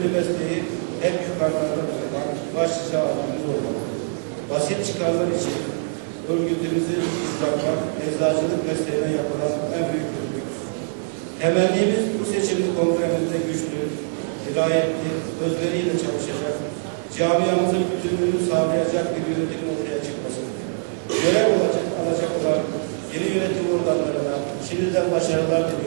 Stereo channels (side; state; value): left; silent; digital silence